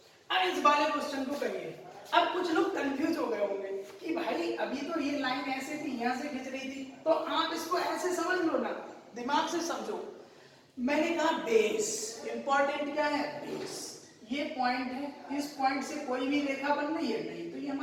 अब इस वाले क्वेश्चन को करिए। अब कुछ लोग कंफ्यूज हो गए होंगे कि भाई अभी तो ये लाइन ऐसे थी, यहाँ से खींच रही थी, तो आप इसको ऐसे समझ लो ना, दिमाग से समझो। मैंने कहा बेस, इंपॉर्टेंट क्या है बेस, ये पॉइंट है, इस पॉइंट से कोई भी रेखा बन रही है नहीं, तो ये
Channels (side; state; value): both; identical; correlation 1.00